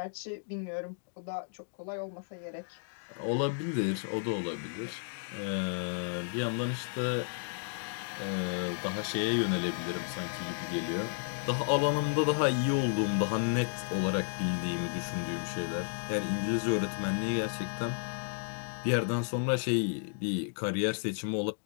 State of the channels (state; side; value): silent; right; digital silence